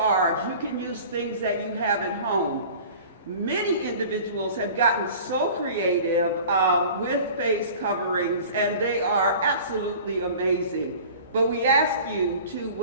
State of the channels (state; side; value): inverted; both; correlation -0.42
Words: you can use things that you have at home. Many individuals have gotten so creative with face coverings, and they are absolutely amazing. But we ask you to